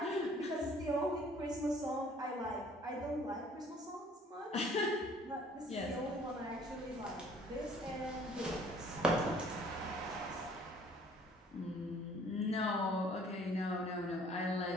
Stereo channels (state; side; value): normal; both; correlation 0.56